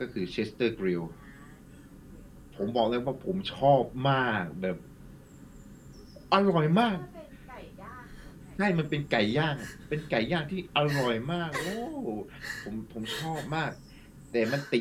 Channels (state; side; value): identical; both; correlation 1.00